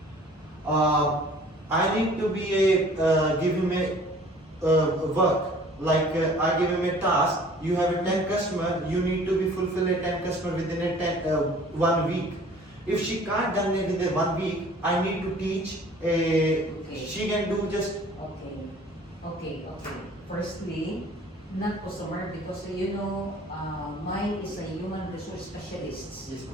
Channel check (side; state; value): both; normal; correlation 0.50